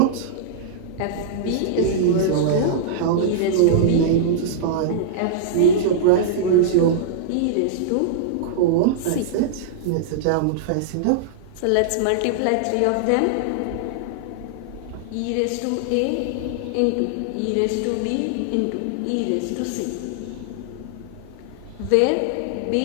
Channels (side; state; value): both; different; correlation -0.02